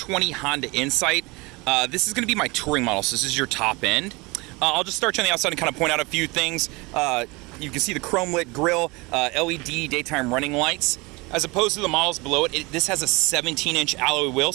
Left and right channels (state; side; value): quieter; left; 25.1 dB